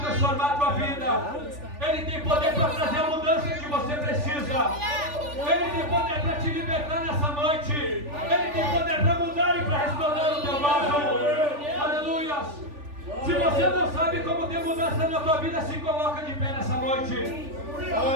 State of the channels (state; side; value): late; left; 3.4 ms